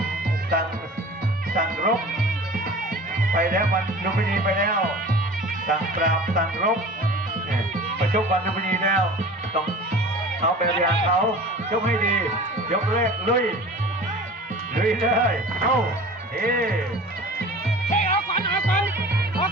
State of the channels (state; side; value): normal; both; correlation 0.40